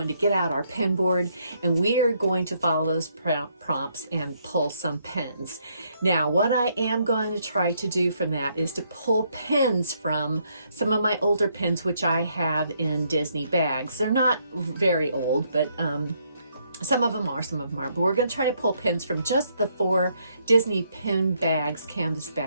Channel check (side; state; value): both; inverted; correlation -0.72